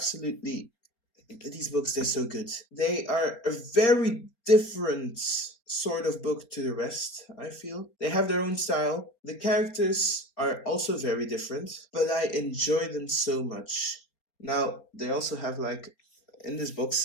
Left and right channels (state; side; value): late; right; 4.3 ms